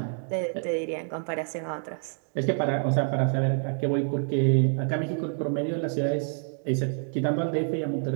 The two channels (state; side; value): silent; left; 60 dB below the other